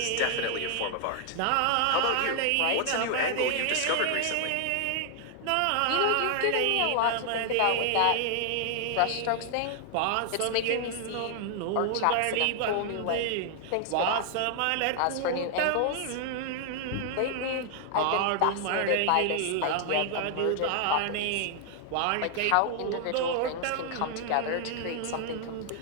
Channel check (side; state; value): both; different; correlation 0.00